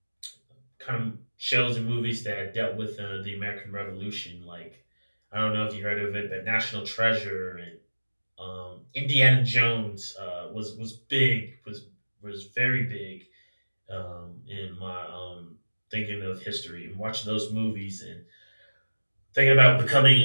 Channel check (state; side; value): inverted; both; correlation -1.00